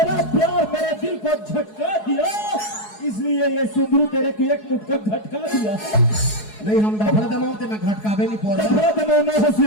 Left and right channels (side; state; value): right; late; 4.7 ms